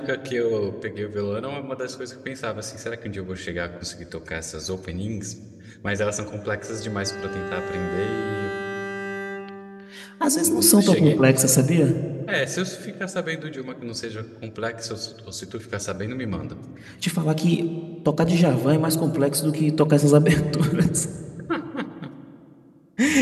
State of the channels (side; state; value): both; identical; correlation 1.00